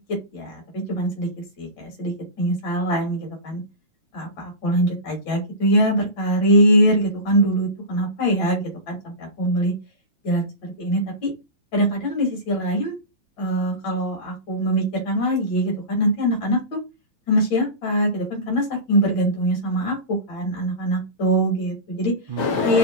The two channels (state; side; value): late; right; 5.9 ms